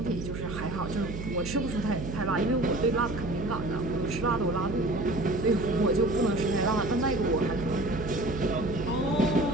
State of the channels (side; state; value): right; noise; hum, 7 dB below the sound